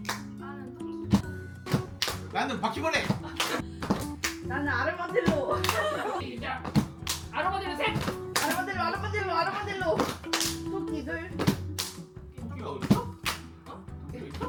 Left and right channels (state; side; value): identical; both; correlation 1.00